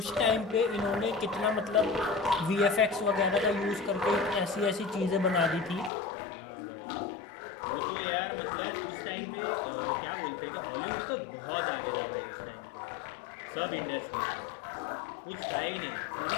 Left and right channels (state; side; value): drops out; right; at 5.9 s